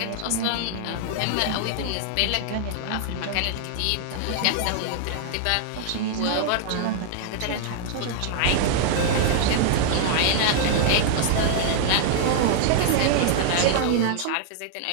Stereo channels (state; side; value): different; both; correlation -0.01